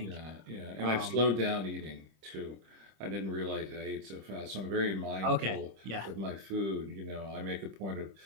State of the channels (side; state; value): left; late; 26 ms